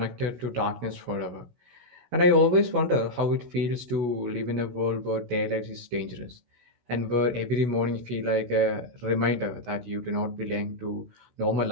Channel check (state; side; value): late; left; 16 ms